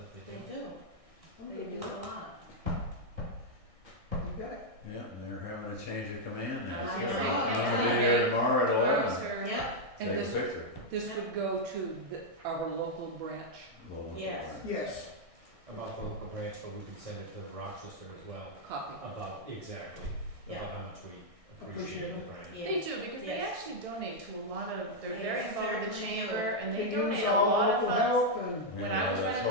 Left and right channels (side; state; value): left; late; 1.6 ms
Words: they They do. do. They do a lot. You got it. Yeah, and they're having a change of command now. I So know. I'm gonna be there tomorrow at 11. Yep. Take a picture. This would go to our local branch. Yes. Yes. About the local branch, but we can send it to Rochester as well, Copy. about, exactly, Yeah. about how much we Appreciate appreciate the it. branch. They do, because they Yes. actually donate to a lot of, they're They very involved with the certainly chamber, do. and they give us donate a all lot of local funds. help and When I was running the